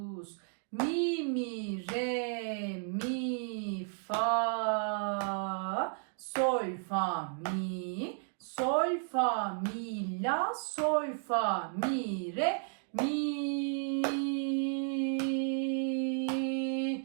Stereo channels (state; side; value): silent; left; 55 dB below the other